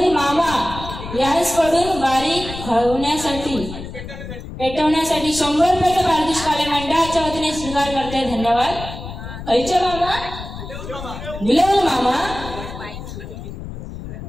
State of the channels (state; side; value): noise; left; rumble, 10 dB below the sound